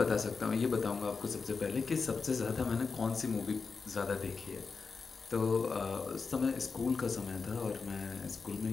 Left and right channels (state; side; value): quieter; right; 4.9 dB